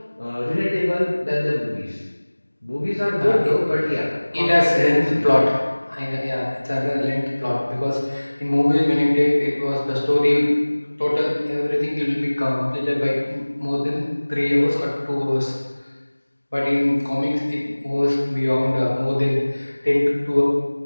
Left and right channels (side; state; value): both; inverted; correlation -1.00